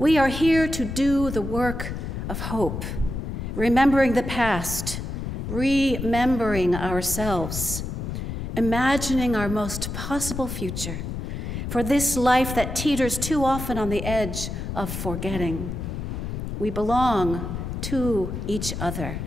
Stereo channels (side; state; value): left; noise; rumble, 5 dB below the sound